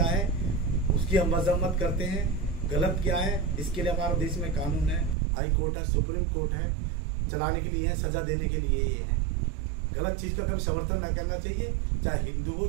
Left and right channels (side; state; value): left; drops out; at 5.2 s